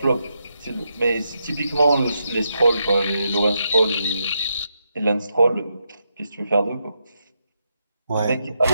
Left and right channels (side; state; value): both; inverted; correlation -0.83